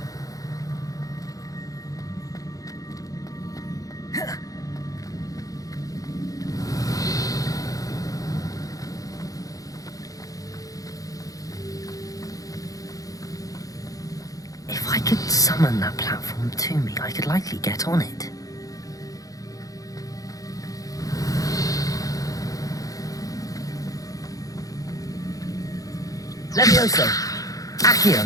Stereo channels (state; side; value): late; right; 0.17 ms